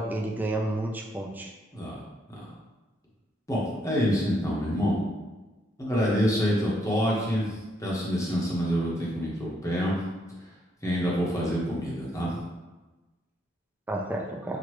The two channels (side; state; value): both; normal; correlation 0.74